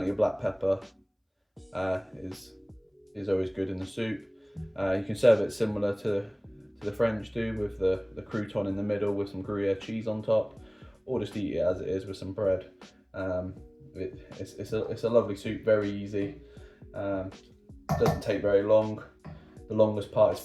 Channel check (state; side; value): identical; both; correlation 1.00